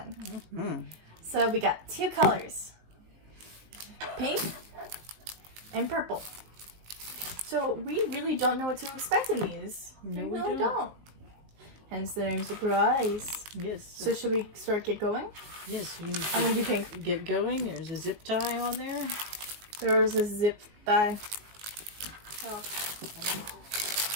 Mm-hmm. So we got 2 colors. Pink and purple. So we really don't know what to expect in these. No, we really don't. Hence the name surprise. Yes. So should we get going? Yes. You I'm going to do pink. get going. There's a zip tie on there. There's a zip tie. Oh.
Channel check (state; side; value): late; left; 19 ms